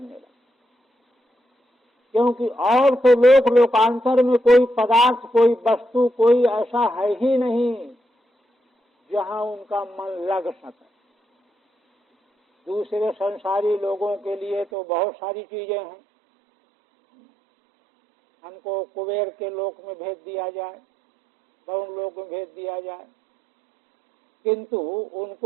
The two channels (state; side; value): drops out; left; at 14.7 s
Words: लगा। क्योंकि और तो लोक लोकांतर में कोई पदार्थ, कोई वस्तु, कोई ऐसा है ही नहीं जहां उनका मन लग सके। दूसरे संसारी लोगों के लिए तो बहुत सारी चीजें हैं। हमको कुबेर के लोक में भेज दिया जाए, वरुण लोक में भेज दिया जाए, किंतु